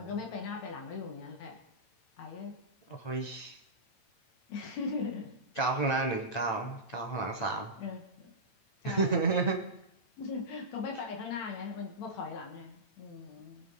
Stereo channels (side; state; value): right; late; 8.9 ms